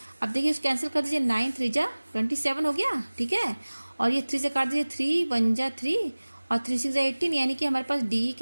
अब देखिए इसको कैंसिल कर दीजिए, 9 3 जा 27 हो गया, ठीक है, और ये 3 से काट दीजिए, 3 1 जा 3 और 3 6 जा 18, यानी कि हमारे पास DE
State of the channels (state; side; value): inverted; both; correlation -1.00